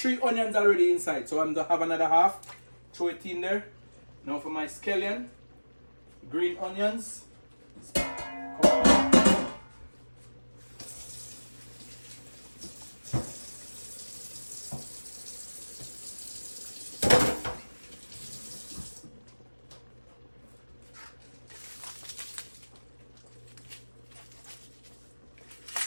onions already inside, so I'm gonna have another half. Throw it in there. Now for my scallion, green onions.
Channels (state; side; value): inverted; both; correlation -1.00